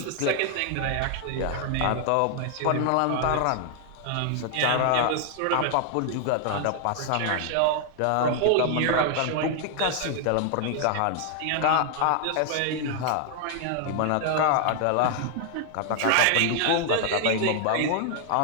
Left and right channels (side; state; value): both; different; correlation 0.00